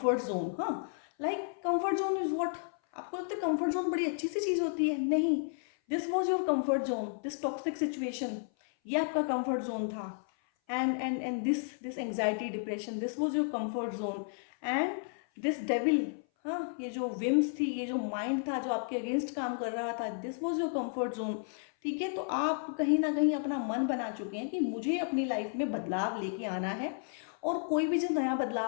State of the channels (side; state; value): right; silent; 56 dB below the other